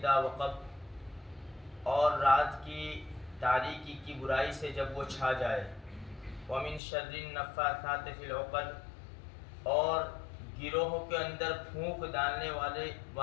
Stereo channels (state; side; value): drops out; right; at 6.8 s